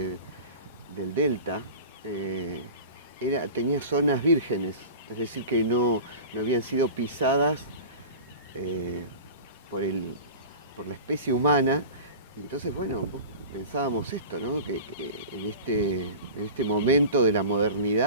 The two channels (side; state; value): both; inverted; correlation -0.36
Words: delta, tenía zonas vírgenes, es decir, que no habían sido pisadas eh, por, por la especie humana. Y entonces, bueno, pensábamos esto, ¿no? Que en este momento de la